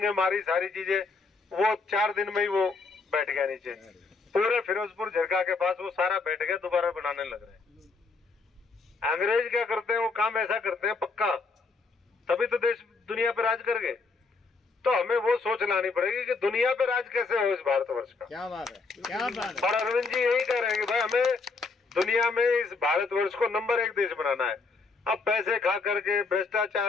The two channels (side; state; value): right; quieter; 4.2 dB